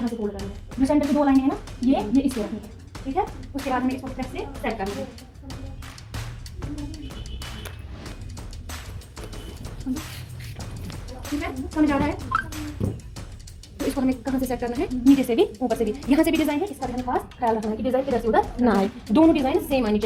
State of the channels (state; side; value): identical; both; correlation 1.00